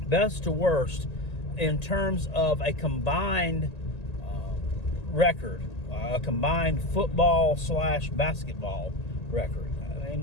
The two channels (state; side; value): late; right; 1.8 ms